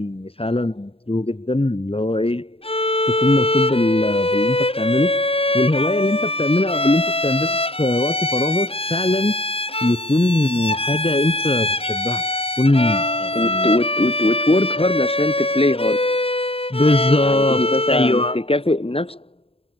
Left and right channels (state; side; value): late; right; 0.27 ms